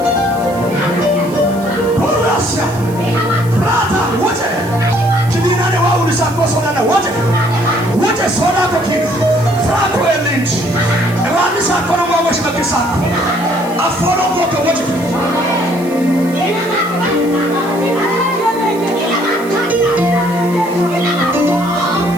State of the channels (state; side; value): noise; right; hiss, 20 dB below the sound